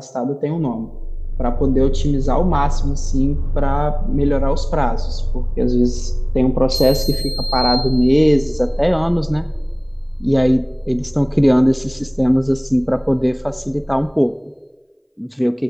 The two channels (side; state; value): both; identical; correlation 1.00